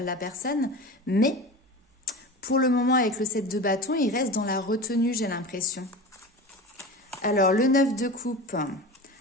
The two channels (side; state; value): both; normal; correlation 0.31